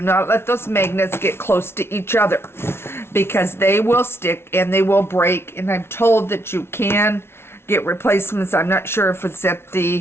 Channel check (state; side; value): late; right; 0.12 ms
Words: let those magnets get close to each other because they will stick and they will break. And I'm told that you can get replacements. I'm not sure if it's at